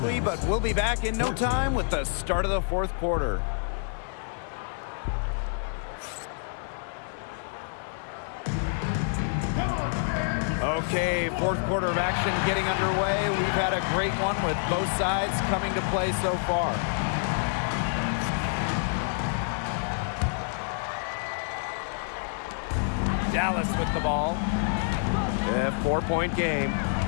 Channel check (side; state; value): right; silent; digital silence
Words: but we'll be back in no time with the start of the fourth quarter. Okay, fourth quarter of action getting underway. We've had a great one with both sides coming to play so far. Dallas with the ball. A 4-point game.